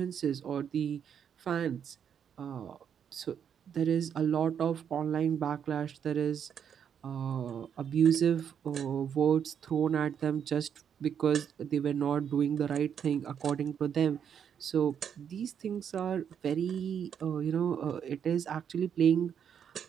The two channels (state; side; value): quieter; left; 8.2 dB